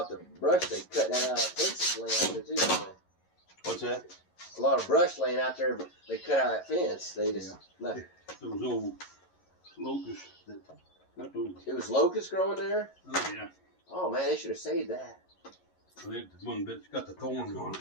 of brush they cut that out of fences laying out there too, don't they? What's that? A lot of brush laying out there, but they cut out that fence. They just left. Those old locusts that got those. It was locust growing there? Oh, yeah. Oh man, they should have saved that. They, the one that's got the thorns on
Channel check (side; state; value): right; late; 11 ms